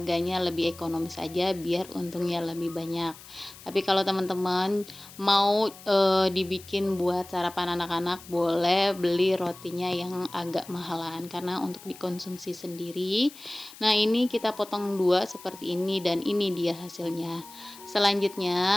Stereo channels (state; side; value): noise; left; hiss, 19 dB below the sound